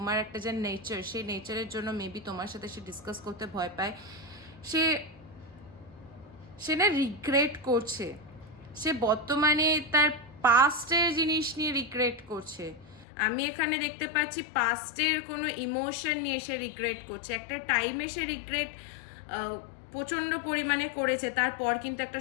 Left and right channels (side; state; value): right; drops out; at 13.1 s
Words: একটা যে নেচার, সেই নেচারের জন্য মেবি তোমার সাথে সে ডিসকাস করতে ভয় পায়। সে সে না রিগ্রেট করছে, সে বর্তমানে তার পাস্টের জিনিস নিয়ে রিগ্রেট করছে। আমি এখানে দেখতে পাচ্ছি পাস্টের কোনো ইমোশন নিয়ে সে রিগ্রেট করছে, একটা টাইমে সে রিগ্রেট প্রচণ্ড পরিমাণে করেছে, তারপর কিন্তু একটা